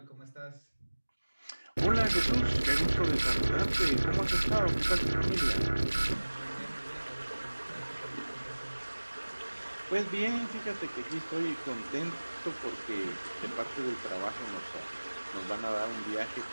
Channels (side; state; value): both; inverted; correlation -1.00